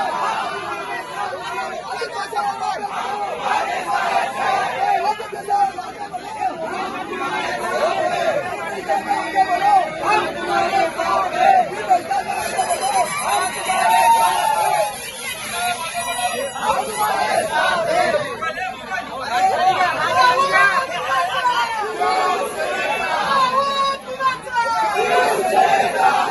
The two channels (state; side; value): identical; both; correlation 1.00